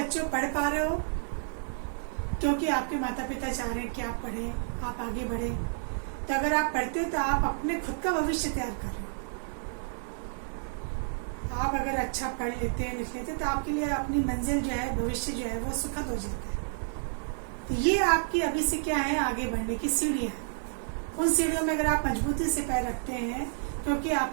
पढ़ पा रहे हो क्योंकि आपके माता पिता चाह रहे हैं कि आप पढ़ें, आप आगे बढ़ें। तो अगर आप पढ़ते हो तो आप अपने खुद का भविष्य तैयार कर रहे हो। आप अगर अच्छा पढ़ लेते हैं, लिख लेते हैं, तो आपके लिए अपनी मंजिल जो है, भविष्य जो है वो सुखद हो जाता है। तो ये आपकी अभी से क्या है, आगे बढ़ने की सीढ़ियाँ हैं। उन सीढ़ियों में अगर आप मजबूती से पैर रखते हैं, क्योंकि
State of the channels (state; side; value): silent; left; digital silence